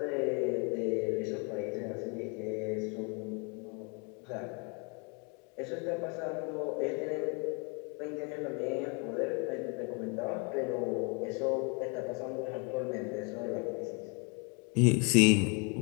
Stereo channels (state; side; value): quieter; right; 34.0 dB